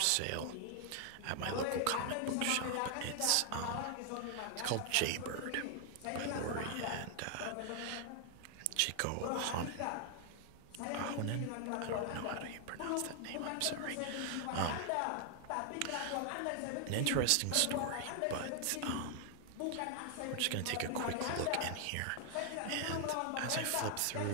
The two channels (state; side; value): different; both; correlation 0.00